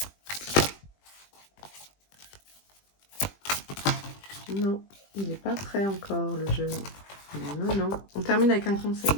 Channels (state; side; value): late; right; 20 ms